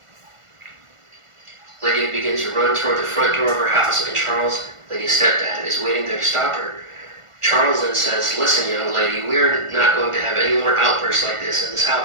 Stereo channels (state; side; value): late; left; 1.5 ms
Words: Lydia begins to run toward the front door of her house, and Charles, Lydia's stepdad, is waiting there to stop her. Charles then says, "Listen, young lady, we are not going to have any more outbursts like this in this